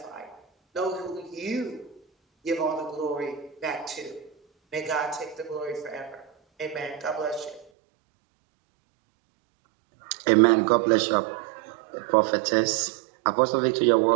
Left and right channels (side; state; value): left; drops out; at 7.7 s